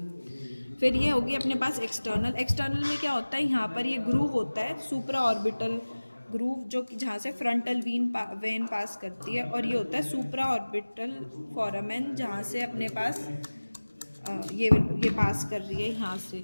फिर ये होगी अपने पास एक्सटर्नल। एक्सटर्नल में क्या होता है, यहाँ पर ये ग्रूव होता है, सुप्रा ऑर्बिटल ग्रूव, जो कि जहाँ से फ्रंटल वेन पास करती है, और ये होता है सुप्रा ऑर्बिटल फोरामेन, जहाँ से अपने पास ये पास कर रही है, यहाँ से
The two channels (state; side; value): inverted; both; correlation -1.00